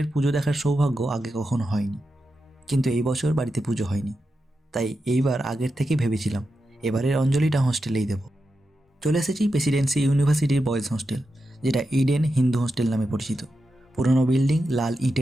পুজো দেখার সৌভাগ্য আগে কখনো হয়নি। কিন্তু এই বছর বাড়িতে পুজো হয়নি, তাই এইবার আগের থেকেই ভেবেছিলাম এবারের অঞ্জলিটা হোস্টেলেই দেব। চলে এসেছি প্রেসিডেন্সি ইউনিভার্সিটির বয়েজ হোস্টেল, যেটা ইডেন হিন্দু হোস্টেল নামে পরিচিত। পুরনো বিল্ডিং, লাল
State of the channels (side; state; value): both; normal; correlation 0.89